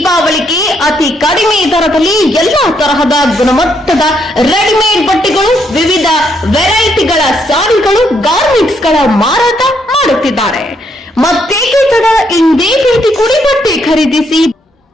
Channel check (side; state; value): both; normal; correlation 0.74